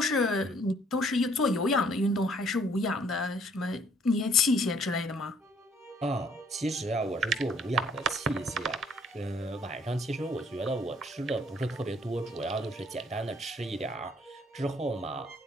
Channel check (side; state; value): both; normal; correlation 0.63